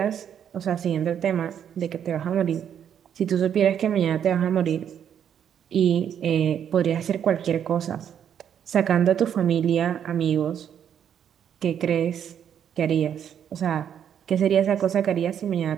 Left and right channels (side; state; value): left; quieter; 8.9 dB